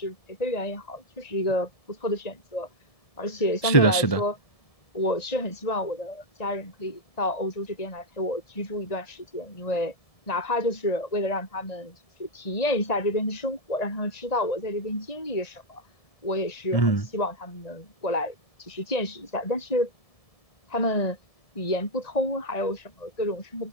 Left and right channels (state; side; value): late; right; 1.7 ms